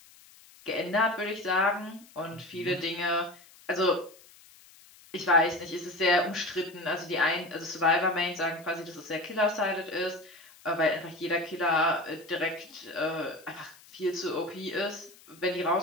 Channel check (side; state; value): left; noise; hiss, 24 dB below the sound